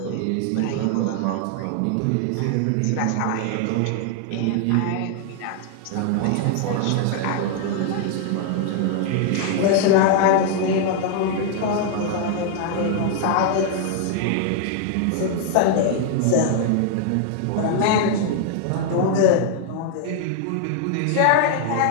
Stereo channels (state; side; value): different; both; correlation 0.00